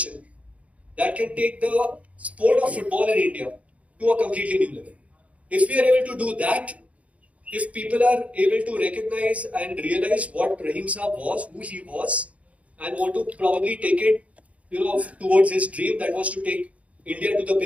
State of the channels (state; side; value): late; left; 0.066 ms